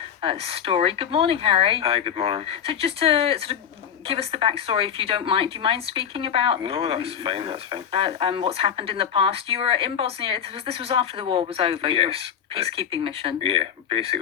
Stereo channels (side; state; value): right; quieter; 8.5 dB